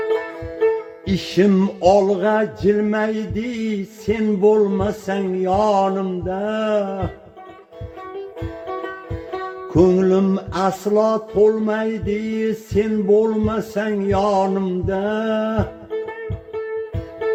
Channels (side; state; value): both; identical; correlation 1.00